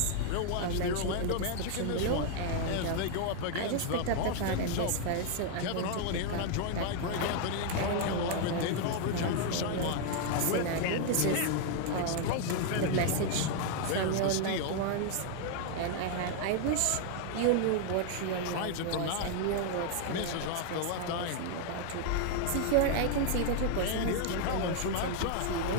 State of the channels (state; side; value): different; both; correlation 0.00